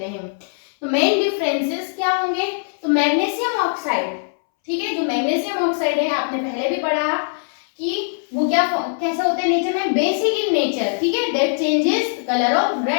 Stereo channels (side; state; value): right; silent; 65 dB below the other